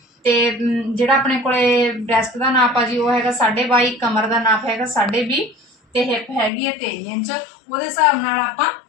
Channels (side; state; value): right; drops out; at 6.5 s